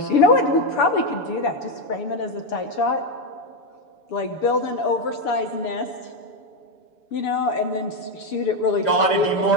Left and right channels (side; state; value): right; late; 6.9 ms